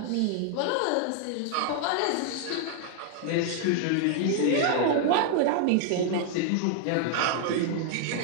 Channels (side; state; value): both; different; correlation 0.00